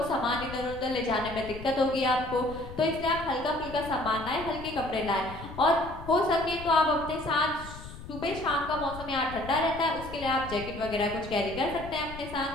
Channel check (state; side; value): noise; left; rumble, 13 dB below the sound